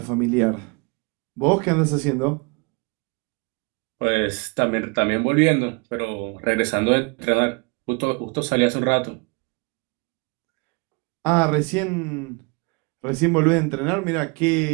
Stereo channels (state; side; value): quieter; left; 30.8 dB